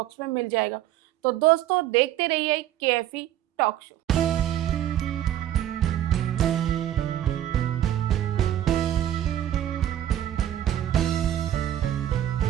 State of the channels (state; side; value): quieter; left; 11.8 dB